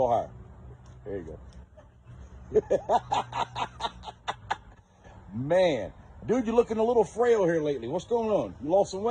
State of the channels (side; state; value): both; identical; correlation 1.00